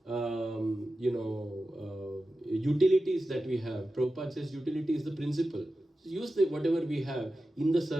utilities that we have. Prabhupada says utility is the principle. So use whatever we have in the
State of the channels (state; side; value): normal; both; correlation 0.93